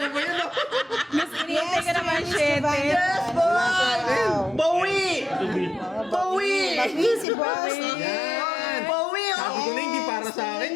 ba yun? oh? Mas inintay ka naman, Miss shit. Giovanni. Yes, boy! Bawi! Bawi! Bawi si boss. Yan! Bawi! Sabi ko na hindi para sa akin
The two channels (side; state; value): right; drops out; at 7.2 s